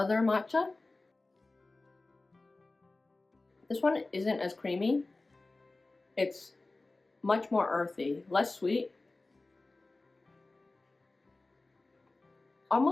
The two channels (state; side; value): quieter; right; 3.2 dB